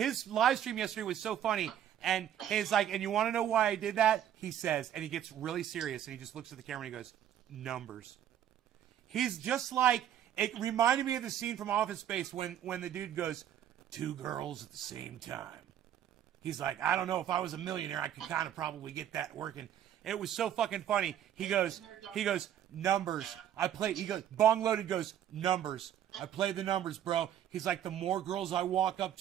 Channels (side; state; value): left; quieter; 10.6 dB